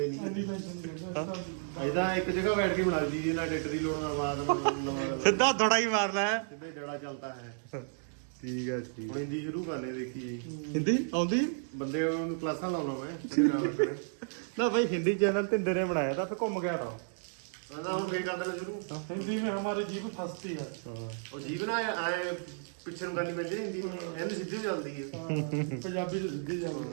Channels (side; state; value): left; silent; digital silence